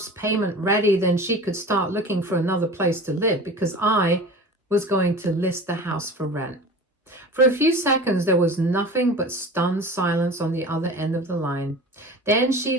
payment ready, then she could start looking for another place to live, because I was going to list the house for rent. For a few seconds, there was nothing but stunned silence on the other end of the line. Then she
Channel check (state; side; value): normal; both; correlation 0.37